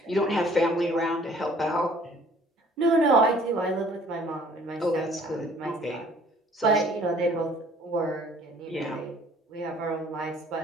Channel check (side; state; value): both; normal; correlation 0.55